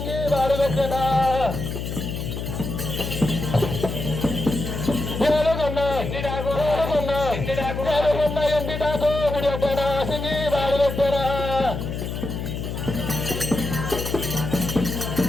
వాడు పెట్టేనా ఎండిటాకు విడిపెట్టేనా సింగి వాడు పెట్టేనా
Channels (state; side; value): noise; left; hum, 5 dB below the sound